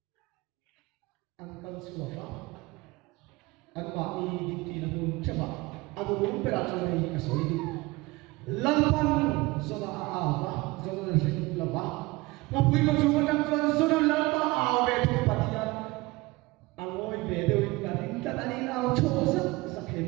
an kan su fa an ba ni di ti na mun cha ba an mu pe ra cha nei ka soi di lal pan so la a ba so la se la ba na pui ko chu ma dang chuan so la ba aw ve thu pathian angoi ve de ka ring ta ani aw cho sa khe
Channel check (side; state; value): left; quieter; 22.3 dB